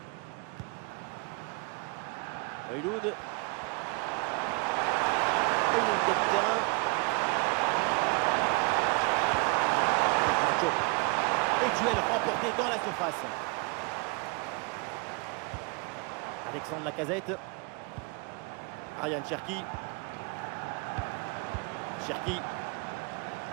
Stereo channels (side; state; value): left; quieter; 30.7 dB